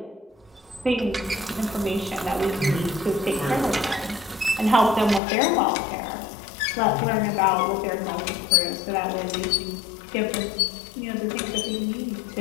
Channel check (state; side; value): drops out; right; at 5.2 s